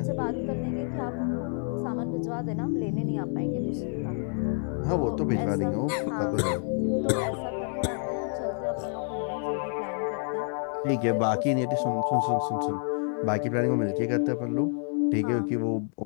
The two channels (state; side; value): silent; right; 55 dB below the other